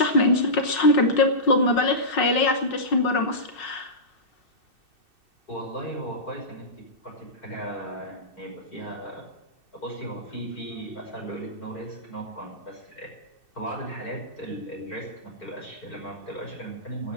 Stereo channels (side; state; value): right; late; 2.6 ms